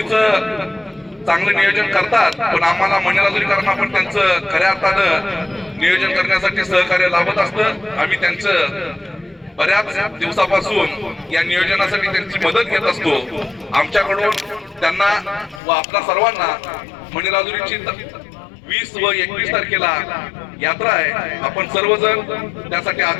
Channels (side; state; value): right; drops out; at 15.6 s